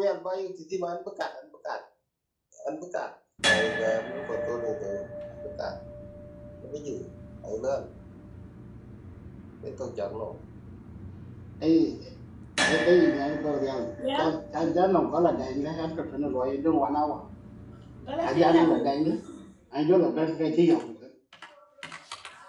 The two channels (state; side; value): identical; both; correlation 1.00